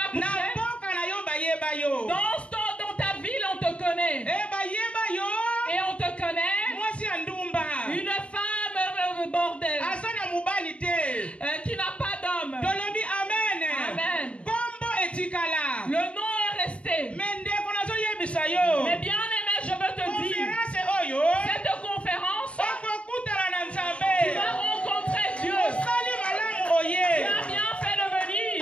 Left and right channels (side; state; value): right; late; 0.061 ms